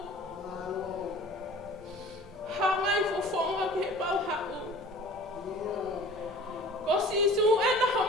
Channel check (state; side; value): normal; both; correlation 0.44